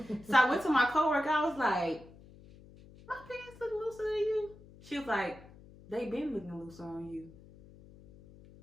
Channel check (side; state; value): left; noise; hum, 21 dB below the sound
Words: So I went to my coworker. I was like, my pants look looser than you. She was like, they been looking looser on you.